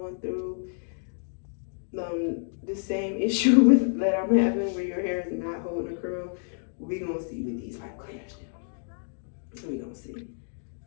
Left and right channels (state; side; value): silent; right; digital silence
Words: through the same issue with that I'm having, where your hair is not holding a curl. We gonna see what these pipe cleaners do. We gonna see.